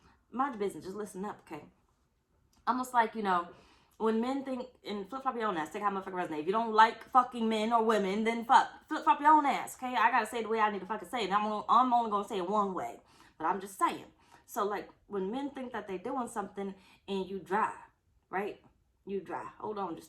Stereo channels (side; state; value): both; identical; correlation 1.00